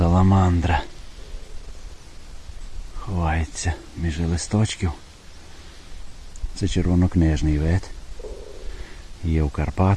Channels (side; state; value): both; identical; correlation 1.00